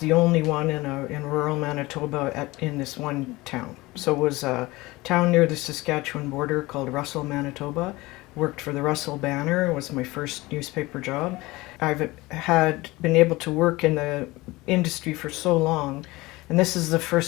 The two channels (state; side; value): quieter; right; 20.8 dB